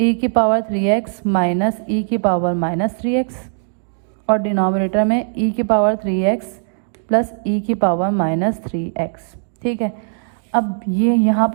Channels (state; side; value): silent; left; digital silence